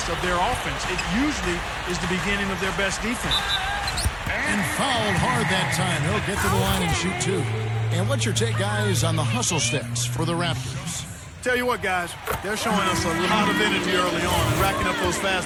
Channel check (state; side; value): identical; both; correlation 1.00